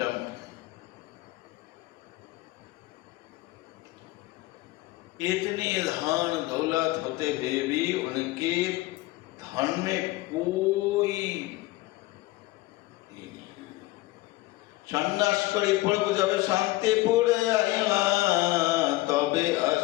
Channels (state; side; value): quieter; right; 19.2 dB